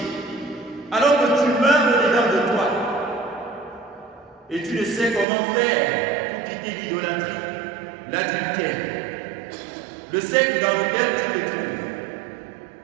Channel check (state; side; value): drops out; left; at 5.2 s